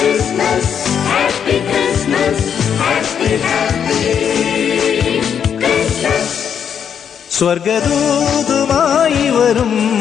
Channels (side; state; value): right; quieter; 8.0 dB